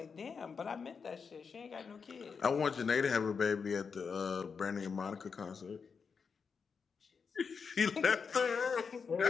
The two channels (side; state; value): right; quieter; 5.7 dB